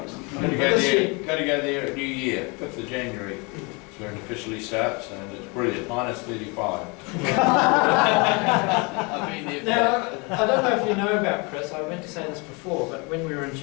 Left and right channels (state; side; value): quieter; right; 29.9 dB